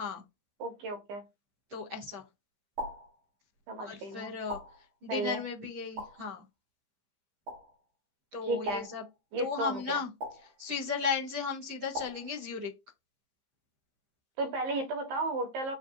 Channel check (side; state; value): left; late; 15 ms